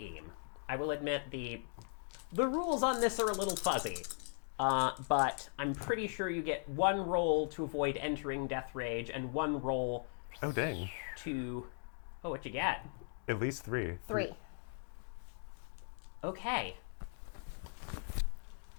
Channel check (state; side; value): silent; right; 52 dB below the other